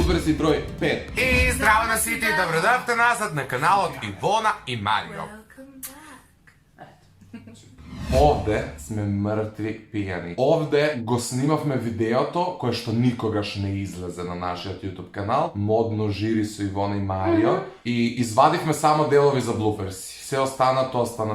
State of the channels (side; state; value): both; identical; correlation 1.00